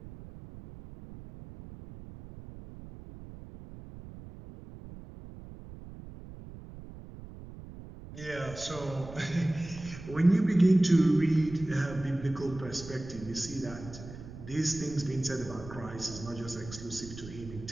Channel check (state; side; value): noise; right; rumble, 14 dB below the sound